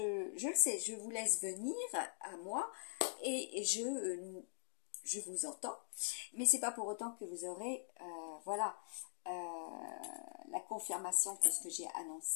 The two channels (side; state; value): right; silent; digital silence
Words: le sais, je vous laisse venir à moi et je vous entends, mais c'est pas pour autant que vous aurez, voilà, la confirmation que ce que j'ai